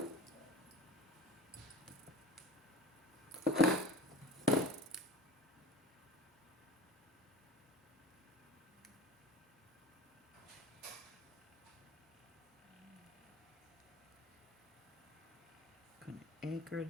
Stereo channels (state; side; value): normal; both; correlation 0.38